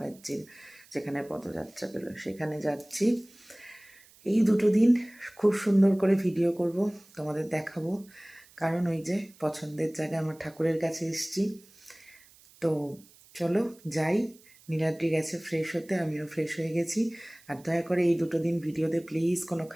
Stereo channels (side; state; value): right; noise; hiss, 26 dB below the sound